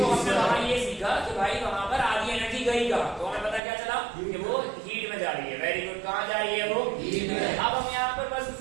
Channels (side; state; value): left; drops out; at 3.6 s